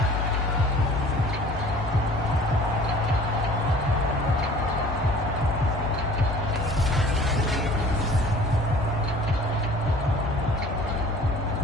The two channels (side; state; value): both; normal; correlation 0.48